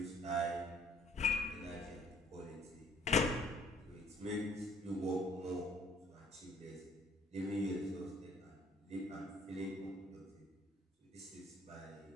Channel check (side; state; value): both; normal; correlation 0.59